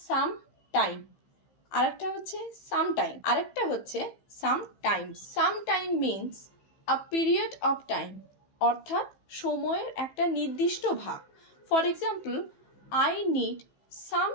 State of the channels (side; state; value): right; late; 15 ms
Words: সাম টাইম, আরেকটা হচ্ছে সাম টাইম, আরেকটা হচ্ছে sometimes. Some time means a period of time, অর্থাৎ সময়ের একটা নির্দিষ্ট ভাগ। For example, I need some